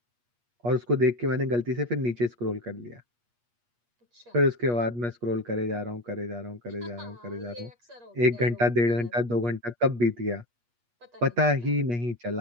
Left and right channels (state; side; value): late; left; 8.4 ms